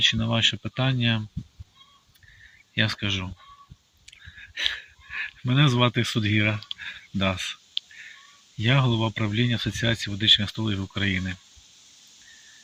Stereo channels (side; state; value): both; identical; correlation 1.00